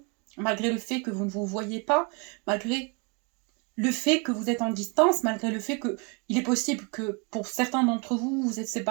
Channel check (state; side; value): quieter; left; 32.2 dB